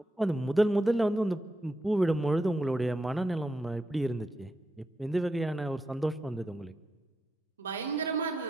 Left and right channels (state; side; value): normal; both; correlation 0.84